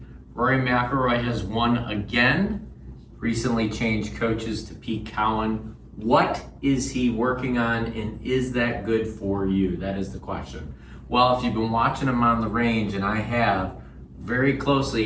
Rory McIlroy has won again. Recently changed coaches to Pete Cowen. What is he working on, and is that good for you? That is the question. Well, if you've been watching him on the range, and I have, very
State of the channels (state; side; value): identical; both; correlation 1.00